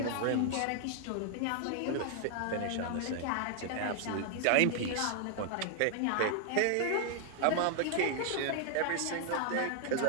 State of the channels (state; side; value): different; both; correlation 0.00